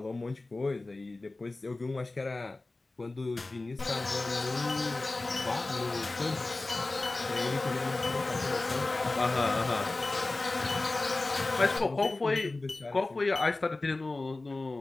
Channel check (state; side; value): quieter; right; 3.2 dB